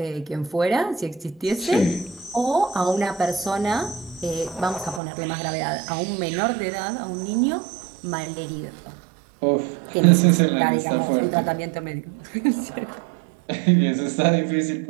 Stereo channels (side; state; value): left; drops out; at 5.0 s